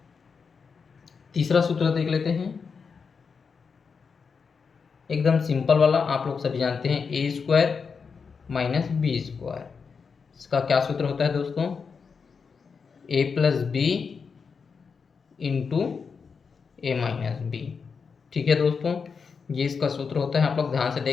तीसरा सूत्र देख लेते हैं, एकदम सिंपल वाला, आप लोग सभी जानते हैं, ए स्क्वायर माइनस बी स्क्वायर। इसका क्या सूत्र होता है दोस्तों? A plus B into A minus B. ठीक है दोस्तों, ये इसका सूत्र होता है। आप लोग ध्यान से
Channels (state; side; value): quieter; right; 5.6 dB